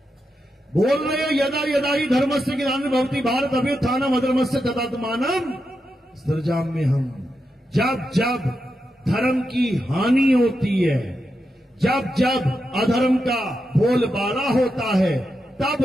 बोल रहे हो यदा यदा ही धर्मस्य ग्लानिर्भवति भारत अभ्युत्थानम् अधर्मस्य तदात्मानम् सृजाम्य हम। जब जब धर्म की हानि होती है, जब जब अधर्म का बोलबाला होता है,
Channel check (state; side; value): normal; both; correlation 0.87